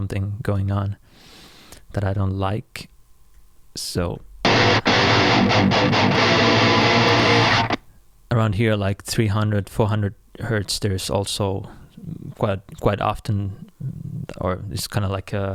going on that I don't like. So around here, like 300, 400 hertz, there's also quite often or it's kind of like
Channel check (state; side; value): identical; both; correlation 1.00